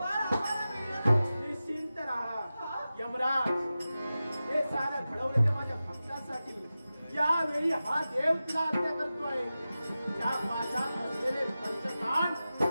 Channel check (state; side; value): inverted; both; correlation -0.94